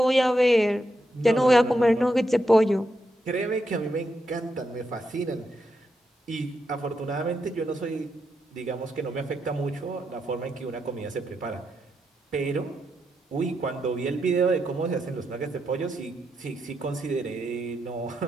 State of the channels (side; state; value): both; normal; correlation 0.83